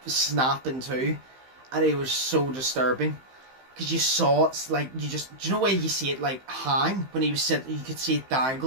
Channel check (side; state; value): left; late; 15 ms